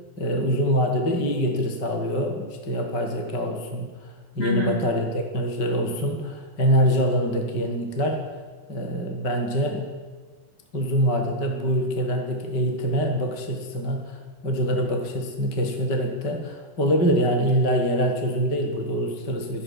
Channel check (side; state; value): right; late; 5.3 ms